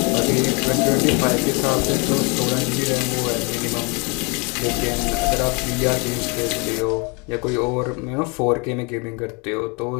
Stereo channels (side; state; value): right; quieter; 30.9 dB